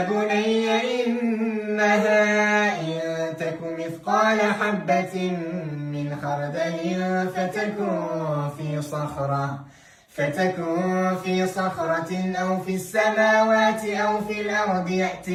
بني إنها إن تك مثقال حبة من خردل فتكن في صخرة أو في السماوات أو في الأرض يأت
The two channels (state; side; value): identical; both; correlation 1.00